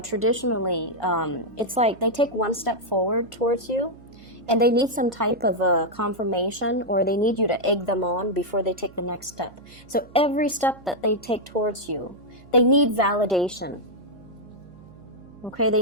traditionally, it's like they take one step forward towards you, and they need some type of confirmation, or they need you to egg them on before they take the next step. So every step that they take towards you, they need validation. Okay, they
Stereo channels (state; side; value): noise; right; hum, 23 dB below the sound